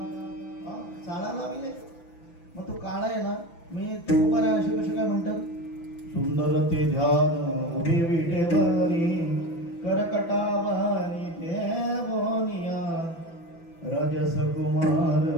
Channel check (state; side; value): late; right; 6.0 ms